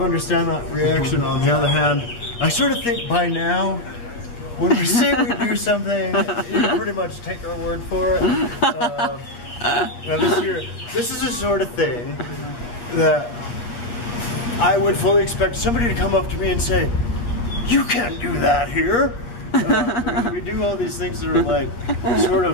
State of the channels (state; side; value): late; right; 8.4 ms